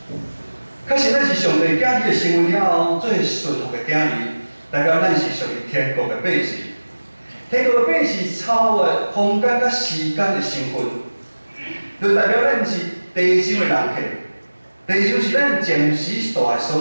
确实，咱是上帝囝儿的身份了后，做顺服的囝儿，代表咱是属于天国的百姓。天国的百姓超越空间甲时间的身份，就代表咱是地上的人客。地上是咱暂时住的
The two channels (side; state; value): both; inverted; correlation -1.00